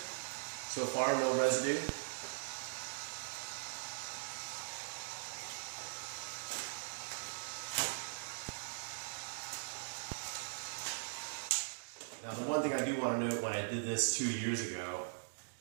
far, no residue. Now the one thing I do want to note, when I did this 2 years ago,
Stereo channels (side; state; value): left; silent; digital silence